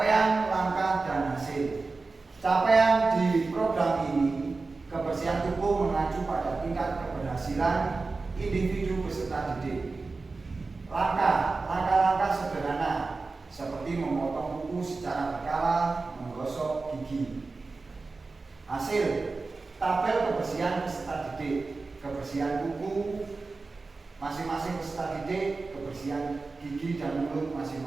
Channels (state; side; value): quieter; left; 3.8 dB